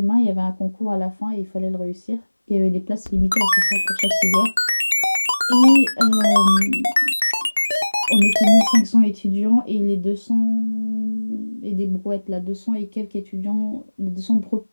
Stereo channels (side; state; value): both; inverted; correlation -1.00